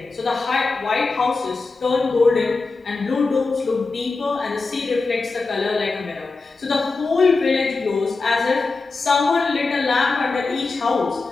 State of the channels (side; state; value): right; quieter; 3.9 dB